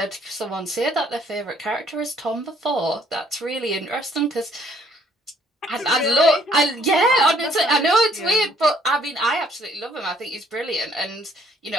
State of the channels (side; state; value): both; normal; correlation 0.64